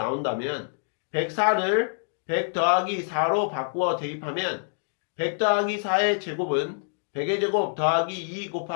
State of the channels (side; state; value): right; silent; digital silence